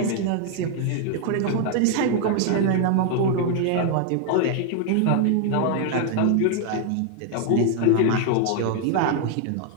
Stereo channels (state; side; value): different; both; correlation 0.00